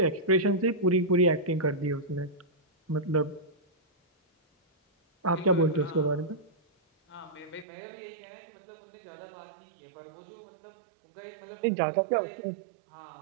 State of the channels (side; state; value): left; drops out; at 7.7 s